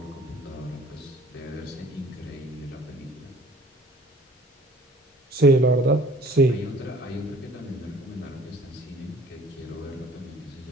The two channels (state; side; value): normal; both; correlation 0.51